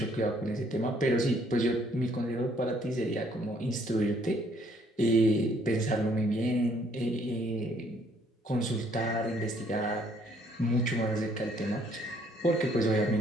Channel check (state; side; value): normal; both; correlation 0.64